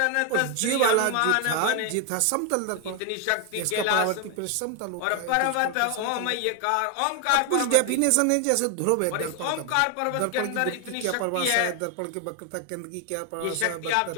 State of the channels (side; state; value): both; different; correlation 0.01